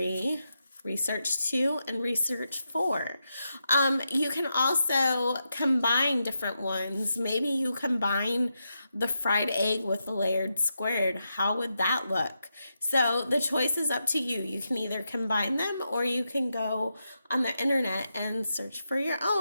Research 2, and Research 4. You can also combine different ones. Maybe you combine the fried egg with the layered squared. How would that look? So the choice is up to you. You can either combine them, or you can go on the internet and search for your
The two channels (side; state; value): both; inverted; correlation -0.86